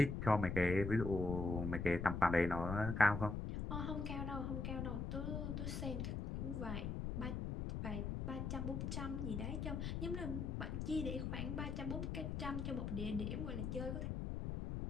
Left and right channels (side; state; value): left; noise; rumble, 2 dB below the sound